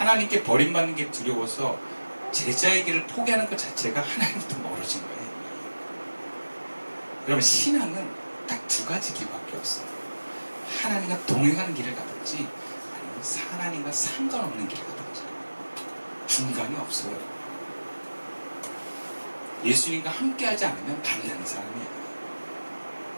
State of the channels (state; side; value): inverted; both; correlation -1.00